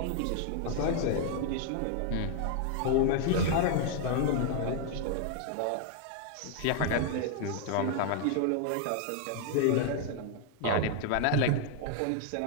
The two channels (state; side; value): different; both; correlation 0.00